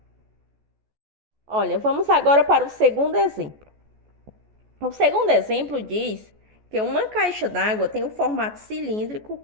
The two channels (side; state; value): left; late; 14 ms